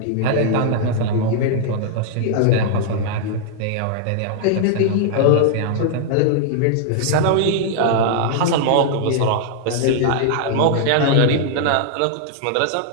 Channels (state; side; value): different; both; correlation -0.01